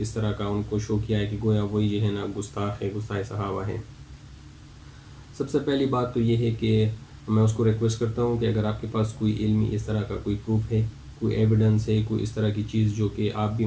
طرح کا ان کو شو کیا ہے کہ گویا وہی جو ہے نا گستاخ ہے، گستاخ صحابہ ہے۔ سب سے پہلی بات تو یہ ہے کہ میں اس کو ریکویسٹ کرتا ہوں کہ اگر آپ کے پاس کوئی علمی اس طرح کا کوئی پروف ہے، کوئی ایویڈنس ہے، کوئی اس طرح کی چیز جو کہ آپ بھی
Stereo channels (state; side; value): identical; both; correlation 1.00